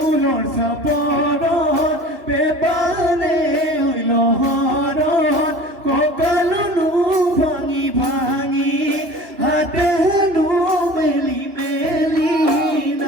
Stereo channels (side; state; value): left; late; 3.0 ms